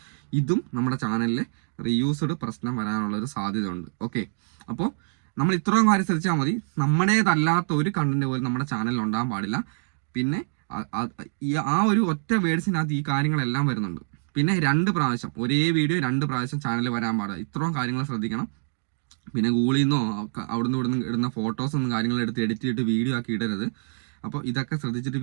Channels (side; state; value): left; silent; digital silence